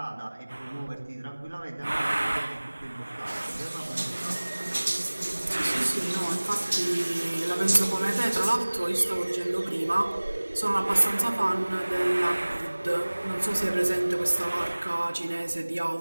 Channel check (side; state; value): both; inverted; correlation -1.00